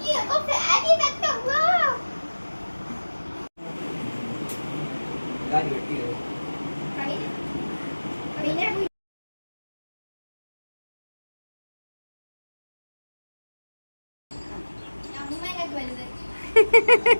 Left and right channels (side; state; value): both; inverted; correlation -1.00